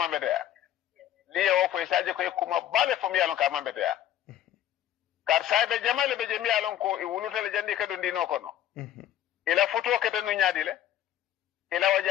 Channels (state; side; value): quieter; right; 11.8 dB